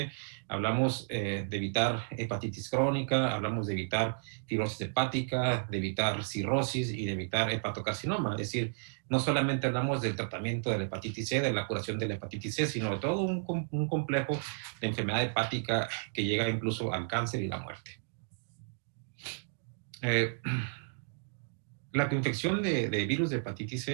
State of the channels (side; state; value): left; silent; digital silence